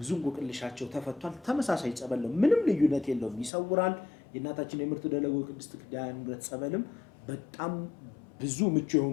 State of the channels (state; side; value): drops out; right; at 3.5 s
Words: እንቆቅልሻቸው ተፈቷል። ተመሳሳይ ጸበል ነው፣ ምንም ልዩነት የለውም፣ ይሰውራል። የእናታችን የምርት ደለጎ ቅድስት ኪዳነ ምሕረት ጸበልም በጣም ብዙ ምቹ